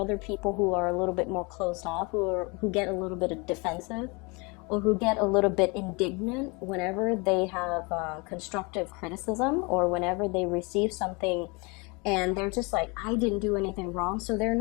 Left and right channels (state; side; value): quieter; right; 28.8 dB